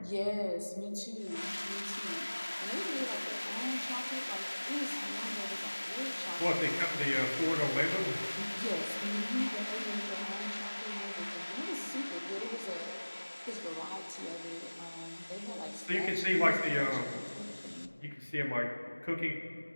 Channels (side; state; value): both; inverted; correlation -1.00